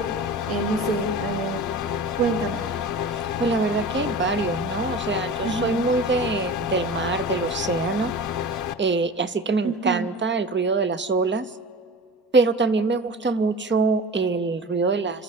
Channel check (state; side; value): normal; both; correlation 0.35